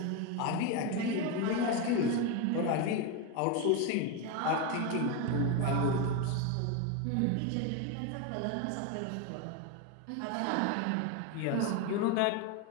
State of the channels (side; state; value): both; different; correlation 0.02